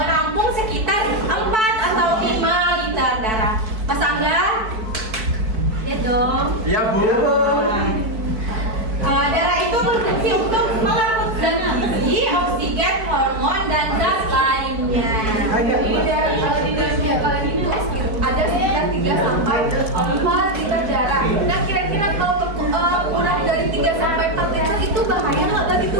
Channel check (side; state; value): left; late; 4.4 ms